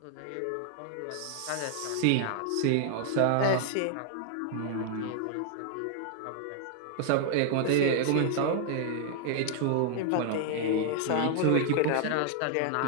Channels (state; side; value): different; both; correlation -0.01